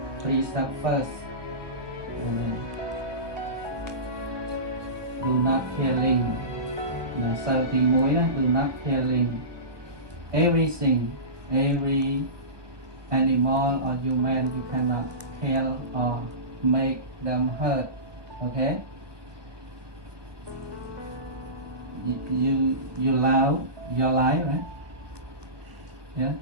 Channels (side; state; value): left; late; 1.2 ms